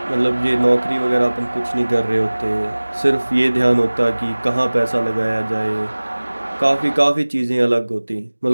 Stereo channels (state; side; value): inverted; both; correlation -1.00